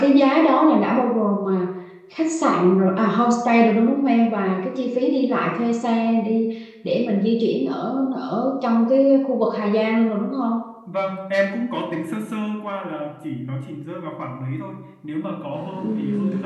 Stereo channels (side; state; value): both; identical; correlation 1.00